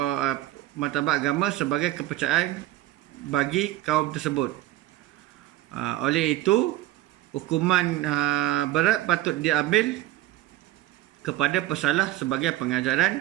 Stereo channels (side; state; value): left; quieter; 15.4 dB